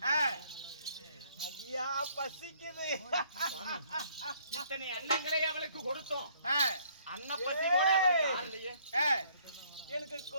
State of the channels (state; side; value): inverted; both; correlation -0.63